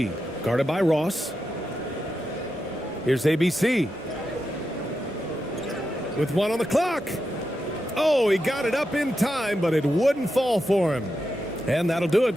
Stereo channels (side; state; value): both; normal; correlation 0.87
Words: guarded by Ross. Here's ABC. With 1 on the clock. Oh, he got it up in time, but it wouldn't fall for him. And that'll do